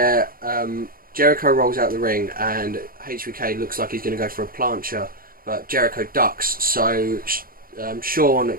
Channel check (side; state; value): left; late; 0.42 ms